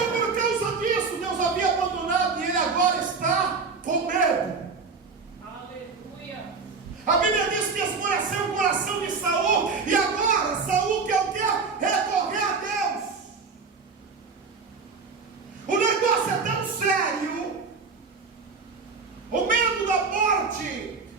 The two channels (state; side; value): quieter; left; 4.8 dB